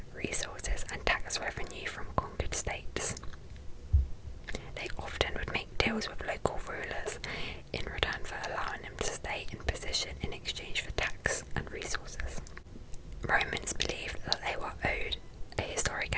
resources, and tax revenue from conquered states. They often would make deals with local rulers in return for allowing them to stay in position in exchange for tax and resources. Romans believed that they were owed a historic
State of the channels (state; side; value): identical; both; correlation 1.00